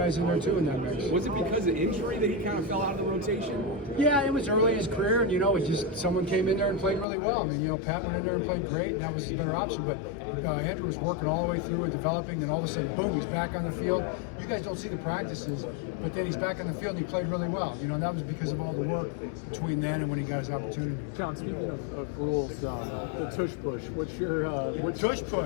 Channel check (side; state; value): right; drops out; at 7.1 s